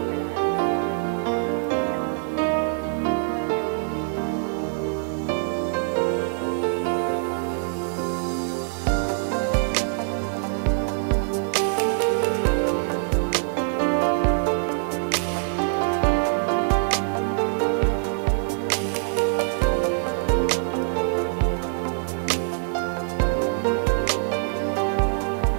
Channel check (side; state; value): left; silent; digital silence